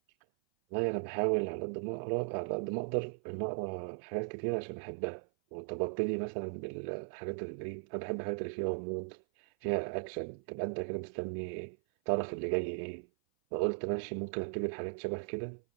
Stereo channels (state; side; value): silent; left; 53 dB below the other